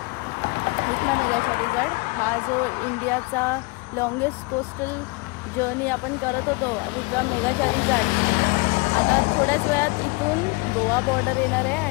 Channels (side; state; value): right; quieter; 28.2 dB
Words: विथ माय मेगा चार्लीज. हा जो इंडियाचा लॉंगेस्ट कोस्टल जर्नी आपण करत होतो विक्रम मेगा चार्लीज, आता थोड्याच वेळात इथून गोवा बॉर्डर येणार आहे.